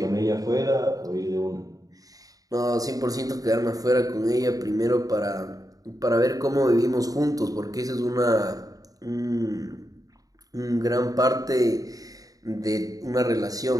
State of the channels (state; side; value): late; left; 0.17 ms